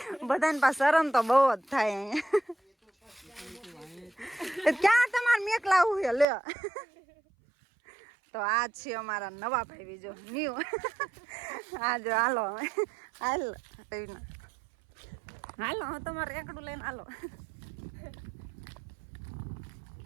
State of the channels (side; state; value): left; drops out; at 6.2 s